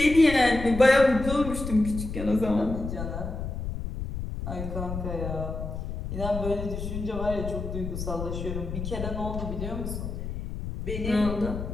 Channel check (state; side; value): noise; left; rumble, 6 dB below the sound